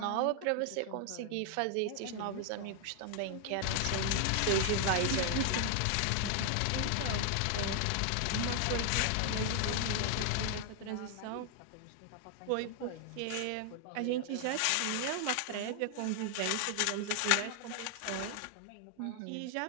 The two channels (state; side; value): different; both; correlation 0.00